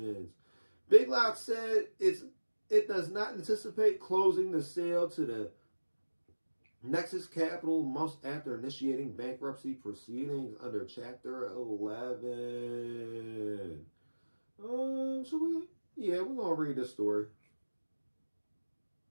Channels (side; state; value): both; inverted; correlation -1.00